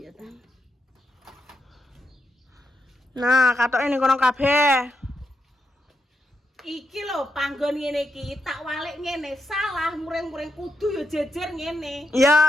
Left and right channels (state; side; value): normal; both; correlation 0.84